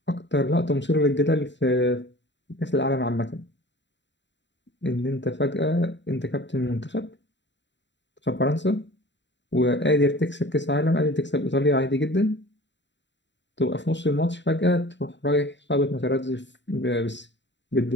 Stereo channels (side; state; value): right; late; 0.52 ms